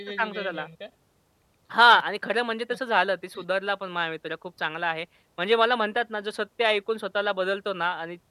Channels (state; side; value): identical; both; correlation 1.00